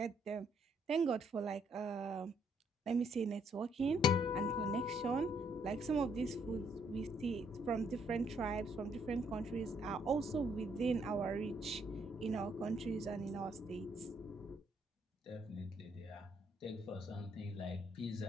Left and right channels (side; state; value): both; normal; correlation 0.70